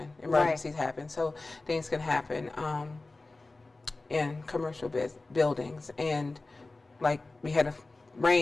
Emergencies happen. So things can happen in commercial buildings. And like we had a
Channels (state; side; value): quieter; right; 3.3 dB